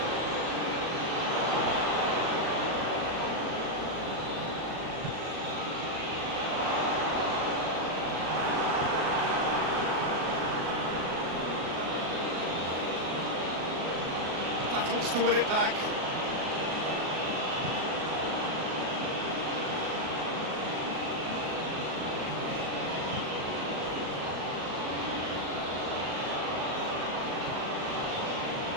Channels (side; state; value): left; late; 37 ms